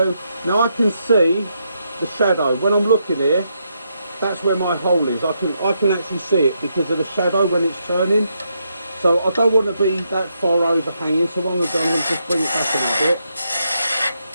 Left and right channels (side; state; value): both; inverted; correlation -0.80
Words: now I can see the shadow. When I'm looking here, that's where my hole is. I can actually see it because of the shadow when it's turning. So I don't want to be that far overhanging, so what I'm going to do, I'm going to just bring it back a little bit.